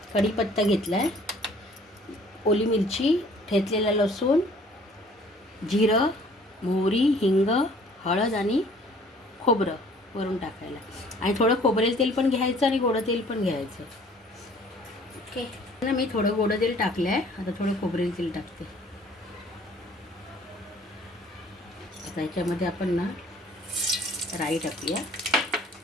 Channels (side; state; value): both; normal; correlation 0.55